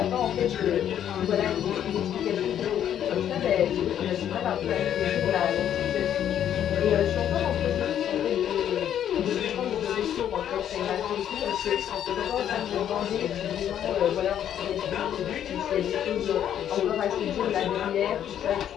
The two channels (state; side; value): quieter; right; 10.1 dB